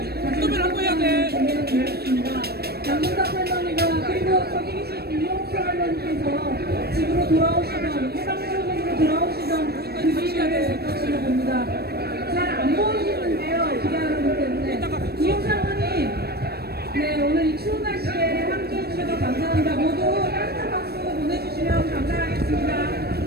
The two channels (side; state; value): left; late; 0.46 ms